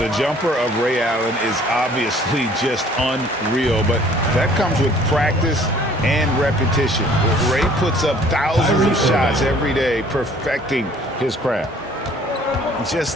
jumper of Ray Allen is obviously just unreal, but that comes with practice and repetition. Ray puts up thousands of shots every day, perfecting his craft.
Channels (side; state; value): both; normal; correlation 0.55